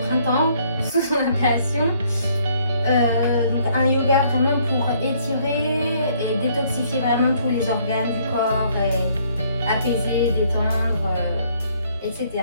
printemps sous son appellation. Donc un yoga vraiment pour étirer et détoxifier vraiment tous les organes du corps et apaiser, détendre, etc.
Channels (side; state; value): both; inverted; correlation -0.65